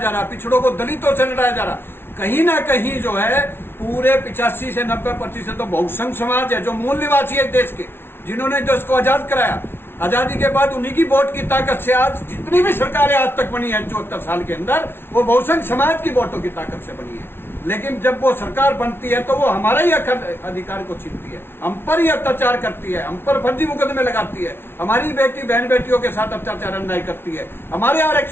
रहा, पिछड़ों को दलितों से लड़ाया जा रहा। कहीं ना कहीं जो है पूरे 85 से 90% तो बहुसंघ समाज है, जो मूल निवासी है देश के, जिन्होंने जो इसको आजाद कराया। आजादी के बाद उन्हीं की वोट की ताकत से आज जितनी भी सरकारें आज तक बनी है 74 साल के अंदर, वो बहुसंघ समाज की वोटों की ताकत से बनी है। लेकिन जब वो सरकार बनती है तो वो हमारा ही अधिकार को छीनती है, हम पर ही अत्याचार करती है, हम पर फर्जी मुकदमे लगाती है, हमारी बेटी बहन बेटियों के साथ अत्याचार अन्याय करती है, हमारे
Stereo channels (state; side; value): late; right; 0.11 ms